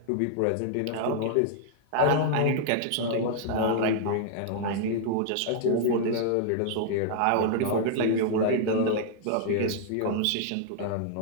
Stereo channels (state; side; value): different; both; correlation -0.01